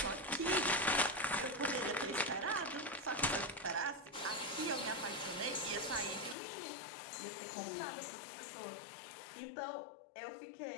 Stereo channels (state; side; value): drops out; right; at 6.4 s